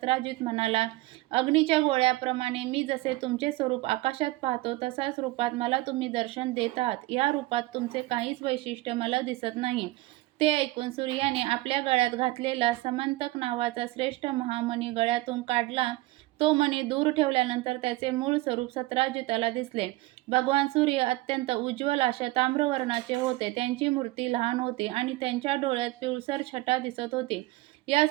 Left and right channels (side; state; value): left; quieter; 19.4 dB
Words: म्हणाला, अग्नीच्या गोळ्याप्रमाणे मी जसे तुमचे स्वरूप आकाशात पाहतो तसाच रूपात मला तुम्ही दर्शन देत आहात. या रूपात तुमचे काहीच वैशिष्ट्य मला दिसत नाही. ते ऐकून सूर्याने आपल्या गळ्यात घातलेला समंतक नावाचा श्रेष्ठ महामणी गळ्यातून काढला. तो मणी दूर ठेवल्यानंतर त्याचे मूळ स्वरूप सत्राजिताला दिसले. भगवान सूर्य अत्यंत उज्ज्वल अशा ताम्रवर्णाचे होते. त्यांची मूर्ती लहान होती आणि त्यांच्या डोळ्यात पिळसर छटा दिसत होती. या